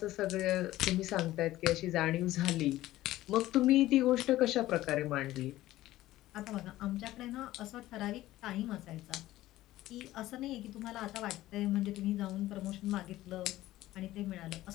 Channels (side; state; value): right; quieter; 15.7 dB